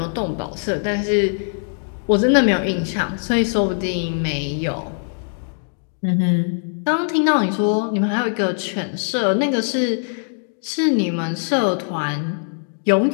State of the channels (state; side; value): silent; right; digital silence